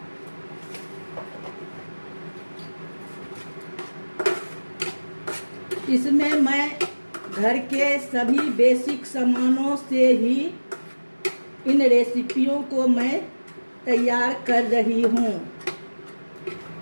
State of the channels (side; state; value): both; inverted; correlation -1.00